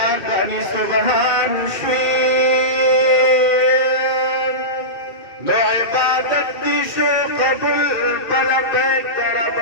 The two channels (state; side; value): late; right; 1.7 ms